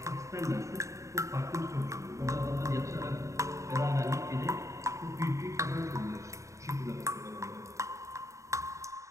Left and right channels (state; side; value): late; left; 0.15 ms